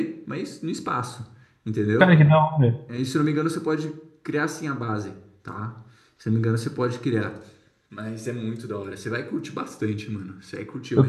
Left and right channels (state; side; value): identical; both; correlation 1.00